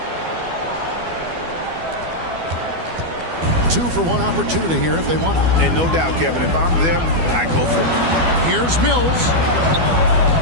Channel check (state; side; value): late; left; 12 ms